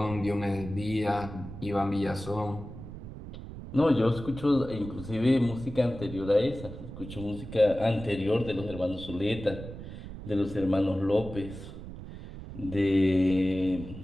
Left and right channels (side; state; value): right; noise; rumble, 12 dB below the sound